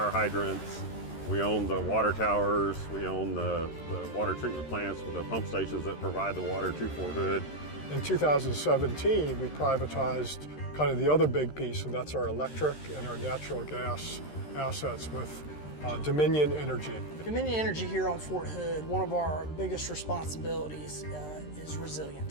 hydrants. We own the water towers. We own the water treatment plants with the pump stations that provide the water to Fort Hood. In 2017, we privatized kind of the other big piece, and that's our electric and our natural gas assets with Dominion Energy. Dominion Energy here on Fort Hood, one of our biggest responsibilities is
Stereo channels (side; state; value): right; late; 13 ms